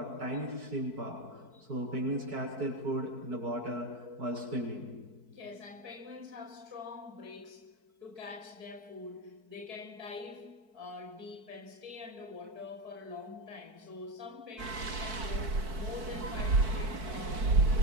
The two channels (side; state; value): left; late; 4.6 ms